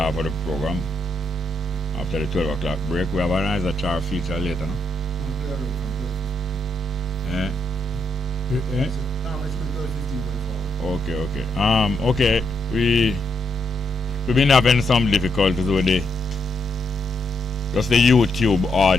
of the program. After the 12 o'clock break, we have a nice chart feature later, no? Okay. Okay. We've been having some difficulties with the YouTube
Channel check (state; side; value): normal; both; correlation 0.79